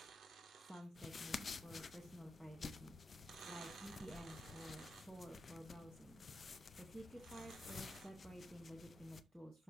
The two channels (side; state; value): both; normal; correlation 0.86